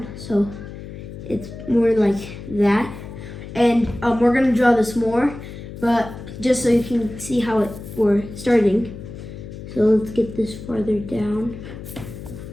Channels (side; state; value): left; noise; hum, 12 dB below the sound